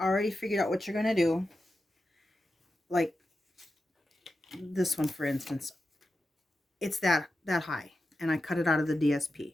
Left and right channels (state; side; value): normal; both; correlation 0.90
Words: figured out what you're going to do, like this one, for instance, it's that high, and I cut it out of the DSP.